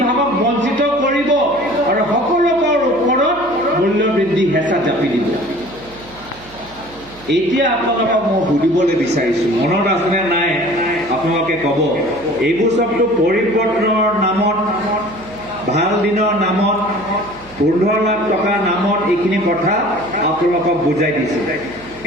বঞ্চিত কৰিব আৰু সকলোকৰ ওপৰত মূল্য বৃদ্ধি হেঁচা জাপি দিব। এতিয়া আপোনালোকক মই সুধিবলৈ বিচাৰিছোঁ, মনত আছেনে নাই আপোনালোকে ক'ব। এইবোৰ চবটো পৰিৱৰ্তনৰ নামত, ভাল দিনৰ নামত, 15 লাখ টকাৰ নামত এইখিনি কথা আপোনালোকক বুজাই দিছে।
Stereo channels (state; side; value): noise; right; hum, 23 dB below the sound